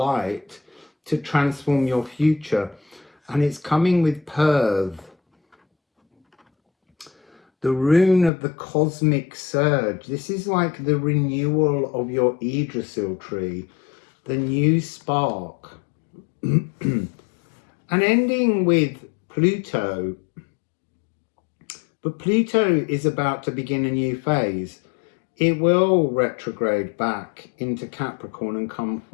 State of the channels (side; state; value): right; drops out; at 8.3 s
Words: to transform your future? And it's coming with Perth, the rune of the cosmic surge. This is like the renewal of your Yggdrasil tree, the new spark. And ending with Pluto, but Pluto is about to begin a new phase. It will retrograde back into Capricorn and come